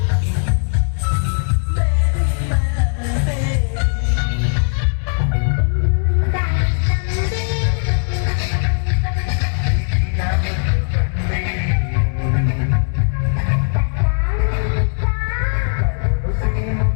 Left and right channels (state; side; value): silent; right; 67 dB below the other